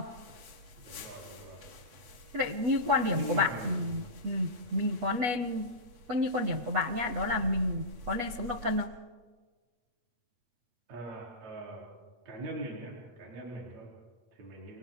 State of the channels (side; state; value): left; late; 8.2 ms